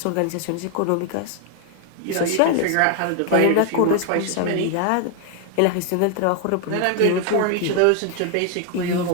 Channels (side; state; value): both; different; correlation 0.00